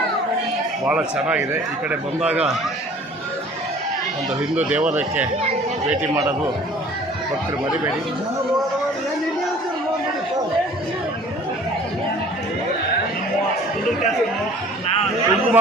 ಭಾಳ ಚೆನ್ನಾಗಿದೆ. ಈ ಕಡೆ ಬಂದಾಗ ಒಂದು ಹಿಂದೂ ದೇವಾಲಯಕ್ಕೆ ಭೇಟಿ ಮಾಡೋದು ಭಕ್ತರು ಮರಿಬೇಡಿ. ಕುಂಕುಮ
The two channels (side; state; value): both; normal; correlation 0.50